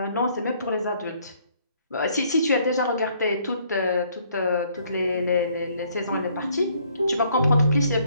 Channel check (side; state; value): both; inverted; correlation -0.65